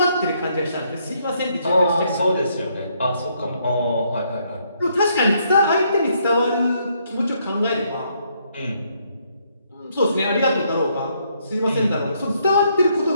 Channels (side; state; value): both; inverted; correlation -0.72